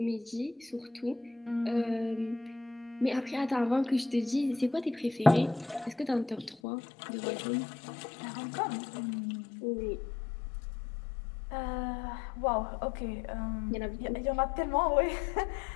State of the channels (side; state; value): right; drops out; at 6.6 s